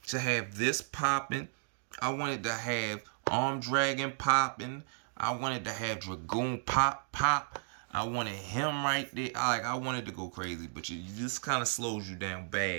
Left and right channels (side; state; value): left; silent; 55 dB below the other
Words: to have this popping. I wanted to have Armed Dragon popping. I wanted to have Dragoon pop. I wanted him right there. I wanted to go crazy, but you just kind of slows you down